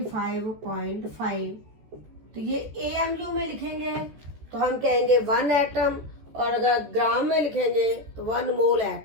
तो ये AMU में लिखेंगे तो हम कहेंगे 1 एटम, और अगर ग्राम में लिखेंगे तो 1 मोल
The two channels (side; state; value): left; late; 14 ms